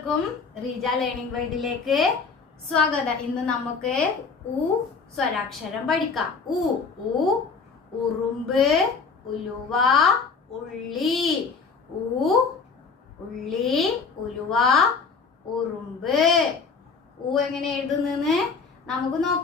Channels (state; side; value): quieter; right; 4.9 dB